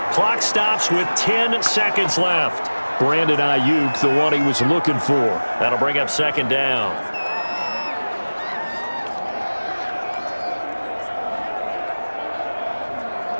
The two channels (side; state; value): both; inverted; correlation -1.00